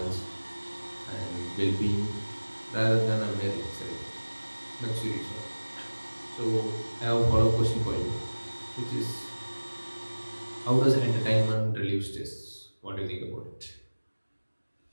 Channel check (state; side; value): inverted; both; correlation -1.00